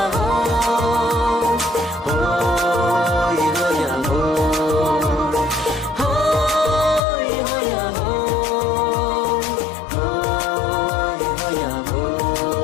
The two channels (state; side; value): drops out; right; at 7.0 s